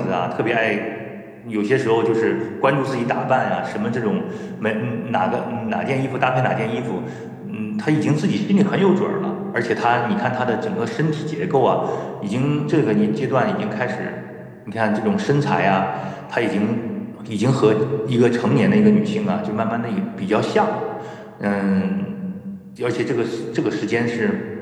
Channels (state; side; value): identical; both; correlation 1.00